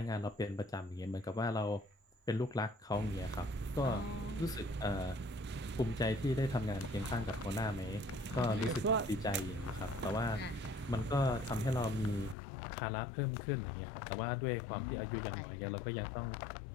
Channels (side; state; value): right; drops out; at 12.4 s